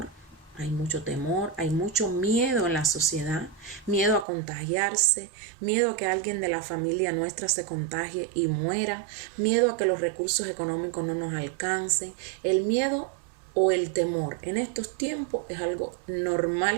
hay mucho temor, hay mucho miedo en la sociedad, miedo a contagiarse, miedo a que alguien de la familia nuestra se contagie y muera, miedo a que los recursos económicos no nos alcancen. El miedo o el temor en estos tiempos es algo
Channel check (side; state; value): left; drops out; at 4.2 s